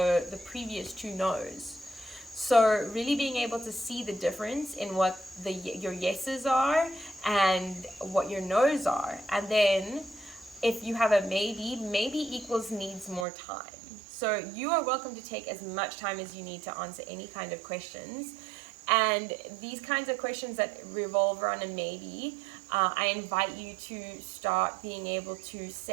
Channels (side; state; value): left; drops out; at 13.2 s